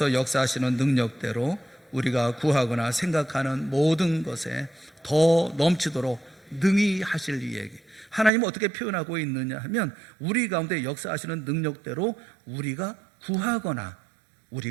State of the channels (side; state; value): left; drops out; at 8.3 s